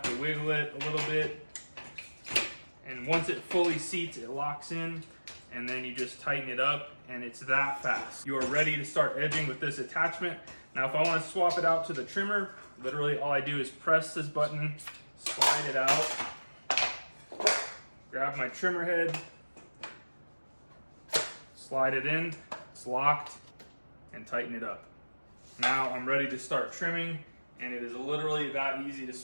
to wiggle it a little bit. And once it fully seats, it locks in, and then you just tighten it up, and it's that fast. You are ready to start edging with this attachment. Now, if I want to swap it out to the trimmer, literally all I do is press this button, slide it out, grab my trimmer head, slide it in, it's locked, and tighten it up. Now I'm ready to start trimming, and it is literally that easy to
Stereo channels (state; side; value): inverted; both; correlation -1.00